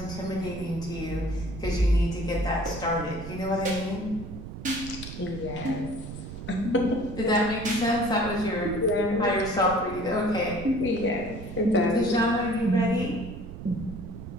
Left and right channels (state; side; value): noise; right; rumble, 10 dB below the sound